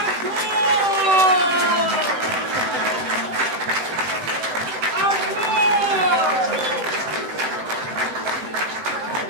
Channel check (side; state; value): left; late; 18 ms